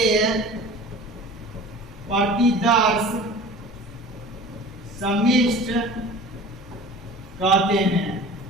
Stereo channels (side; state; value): both; normal; correlation 0.40